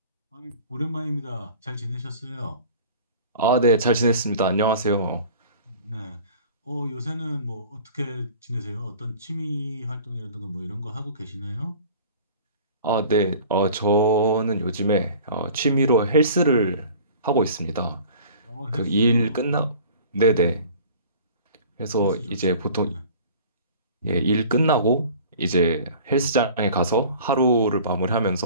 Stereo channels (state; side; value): inverted; both; correlation -0.45